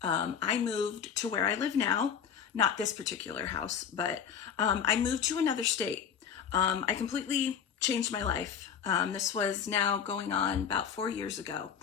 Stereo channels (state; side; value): quieter; right; 7.7 dB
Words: I moved to where I live now, not this particular house, but I moved to another state. I completely changed my life. This was now going on about 4 years ago.